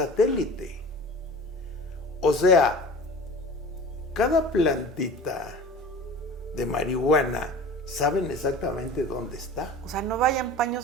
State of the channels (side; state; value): both; normal; correlation 0.38